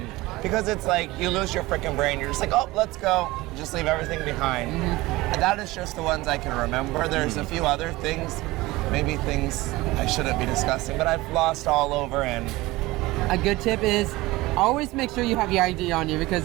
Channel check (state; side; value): quieter; left; 19.9 dB